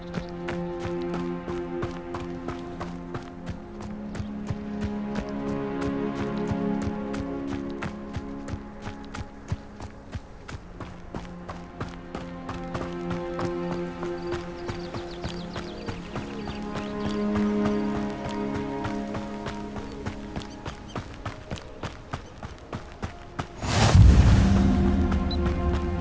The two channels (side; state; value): both; identical; correlation 1.00